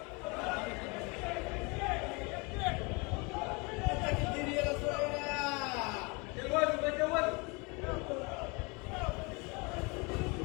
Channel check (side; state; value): right; quieter; 28.9 dB